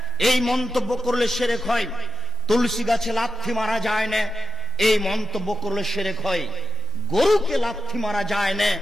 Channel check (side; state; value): both; normal; correlation 0.97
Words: এই মন্তব্য করলে শিরক হয়, তুলসী গাছে লাথি মারা যায় না, এই মন্তব্য করলে শিরক হয়, গরুকে লাথি মারা যায় না,